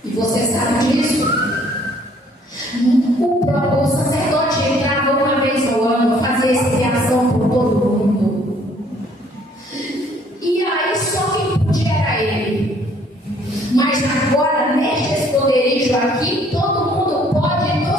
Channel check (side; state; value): both; normal; correlation 0.61